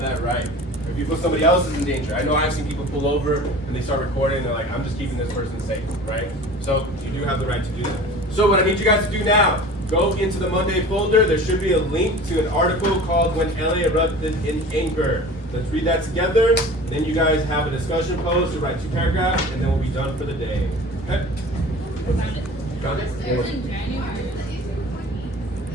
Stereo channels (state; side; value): normal; both; correlation 0.40